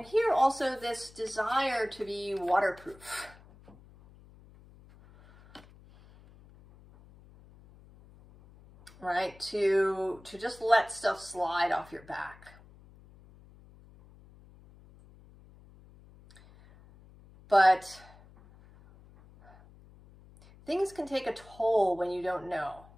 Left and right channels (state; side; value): noise; left; hum, 24 dB below the sound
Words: here also this desire to be waterproof. Right? To just let stuff slide off your back. But things can take a toll when you don't know.